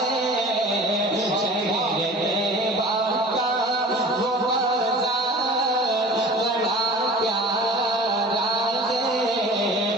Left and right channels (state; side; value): normal; both; correlation 0.41